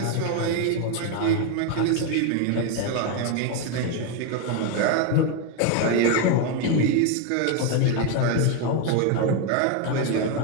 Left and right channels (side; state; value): both; different; correlation 0.01